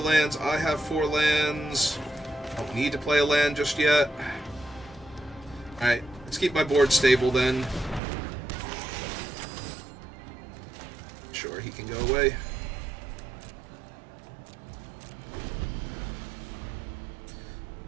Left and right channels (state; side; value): drops out; left; at 8.0 s